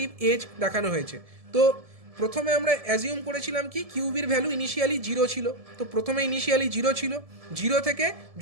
এজ দেখানো হয়েছে। তো প্রথমে আমরা অ্যাজিউম করেছিলাম কি কিউবির ভ্যালু ইনিশিয়ালি 0 ছিল, তো প্রথমে ইনিশিয়ালি 0 ছিল, 0 থেকে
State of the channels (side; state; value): left; late; 1.7 ms